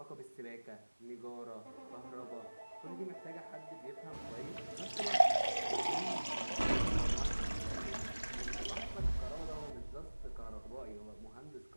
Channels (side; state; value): both; inverted; correlation -1.00